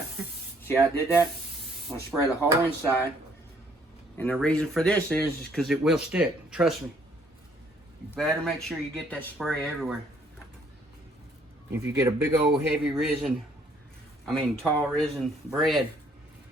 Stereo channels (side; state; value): both; normal; correlation 0.64